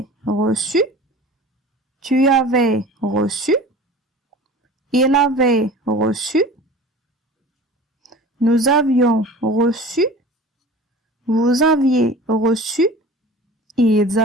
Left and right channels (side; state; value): both; normal; correlation 0.40